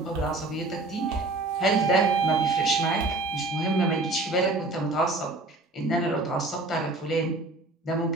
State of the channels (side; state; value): left; quieter; 3.0 dB